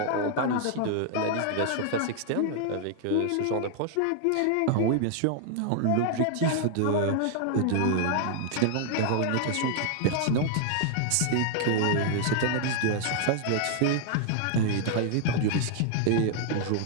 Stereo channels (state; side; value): different; both; correlation 0.00